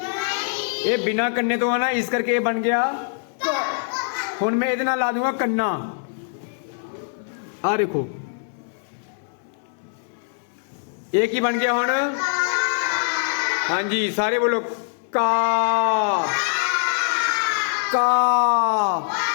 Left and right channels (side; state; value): right; silent; digital silence